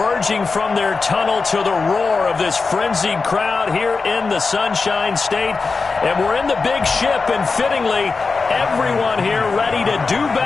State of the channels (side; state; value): right; quieter; 4.4 dB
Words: from their tunnel to the roar of this frenzied crowd here in the Sunshine State. And we're in the big ship, and fittingly, everyone here ready to do